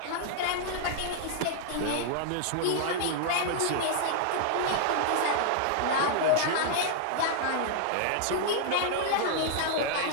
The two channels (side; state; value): both; different; correlation -0.01